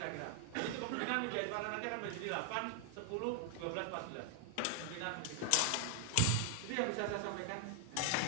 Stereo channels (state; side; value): different; both; correlation 0.00